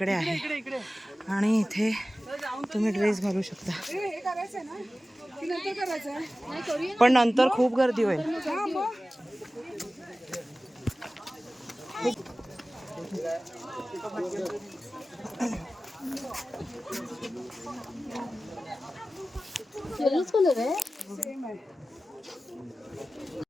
आहे. आणि इथे तुम्ही ड्रेस घालू शकता. हे करायचंय ना की नंतर करायचंय? पण नंतर खूप गर्दी होईल. हा मग.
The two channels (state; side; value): normal; both; correlation 0.96